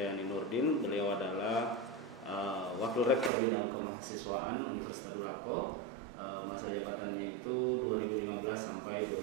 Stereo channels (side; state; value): left; drops out; at 3.3 s